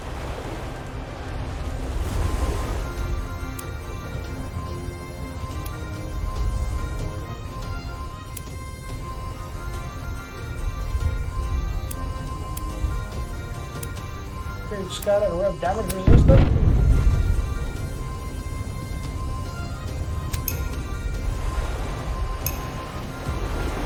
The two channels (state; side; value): identical; both; correlation 1.00